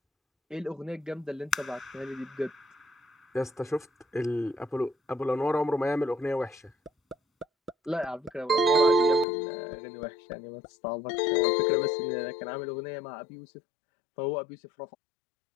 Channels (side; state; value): right; drops out; at 9.2 s